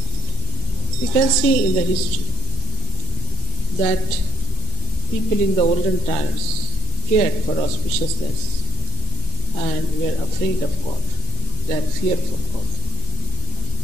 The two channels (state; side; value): normal; both; correlation 0.49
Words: We can see in the history that people in the olden times cared for auspiciousness and were afraid of God. They had fear for God,